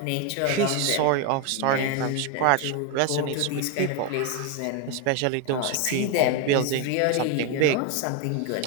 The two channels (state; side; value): different; both; correlation 0.02